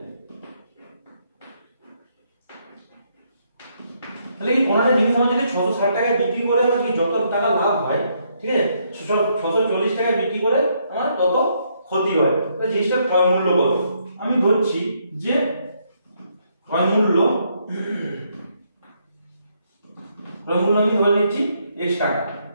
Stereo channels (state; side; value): inverted; both; correlation -0.74